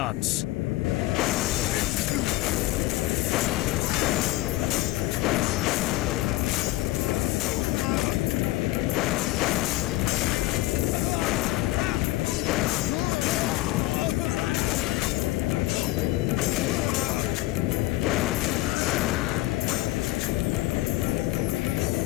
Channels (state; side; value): quieter; right; 18.6 dB